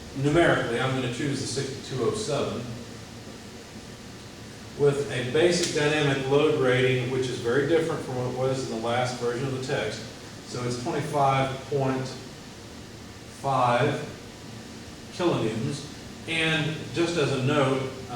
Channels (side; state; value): both; identical; correlation 1.00